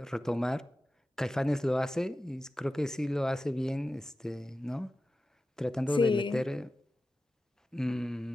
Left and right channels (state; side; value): normal; both; correlation 0.94